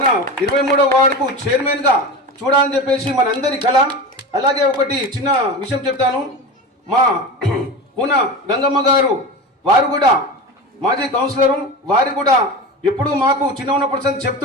23వ వార్డుకు చైర్మన్గా చూడాలని చెప్పేసి మనందరి కళ. అలాగే ఒకటి చిన్న విషయం చెప్తాను. మా కూన గంగమ్మ గారు వారు కూడా మాజీ కౌన్సిలరు, వారు కూడా ఎప్పుడు మాకు చిన్న ఉన్నప్పుడు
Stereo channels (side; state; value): both; normal; correlation 0.27